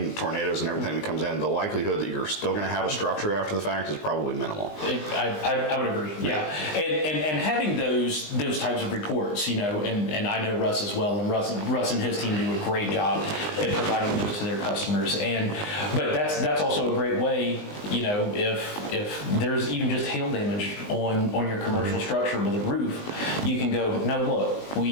tornadoes and everything that comes in, the likelihood that you're still going to have a structure after the fact is probably minimal. I would agree. Yeah. And having those types of reports, and I know Russ as well, and Russ and his team do a great job at providing those to their customers. But that's also a great way, if there's even just hail damage on your commercial structure with a roof, you can go, no, look,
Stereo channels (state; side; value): late; right; 20 ms